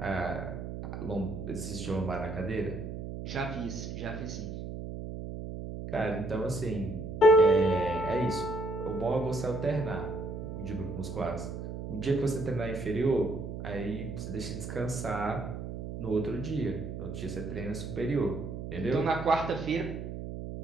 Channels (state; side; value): noise; right; hum, 7 dB below the sound